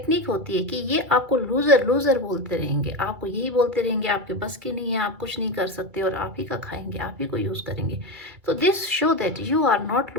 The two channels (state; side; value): late; left; 2.4 ms